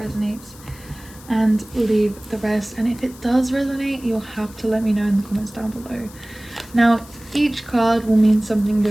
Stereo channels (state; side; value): noise; left; hiss, 21 dB below the sound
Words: resonates and leave the rest. And if it does resonate, you'll have to let me know in the comments down below. Now, each card will mean something